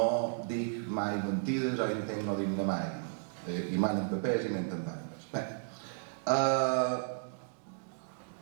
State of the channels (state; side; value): silent; left; digital silence